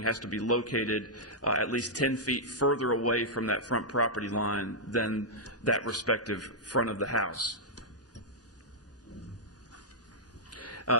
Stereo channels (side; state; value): both; normal; correlation -0.08